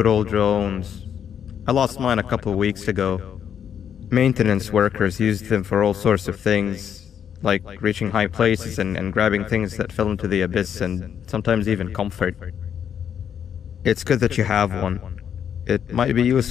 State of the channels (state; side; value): quieter; right; 8.5 dB